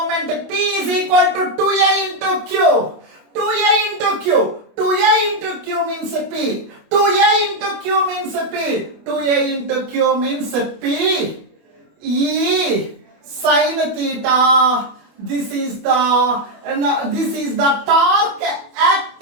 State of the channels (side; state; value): left; late; 25 ms